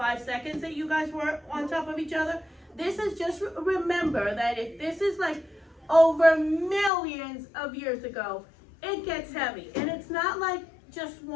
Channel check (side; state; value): right; drops out; at 6.9 s